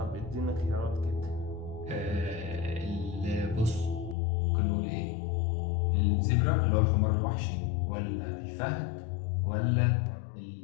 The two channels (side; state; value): right; drops out; at 4.2 s